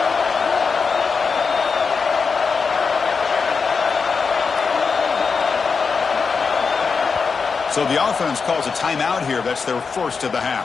So the offense calls a timeout here. That's their 1st of the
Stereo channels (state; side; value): quieter; right; 5.2 dB